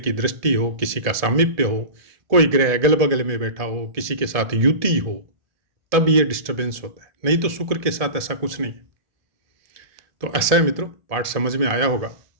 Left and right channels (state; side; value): late; left; 1.7 ms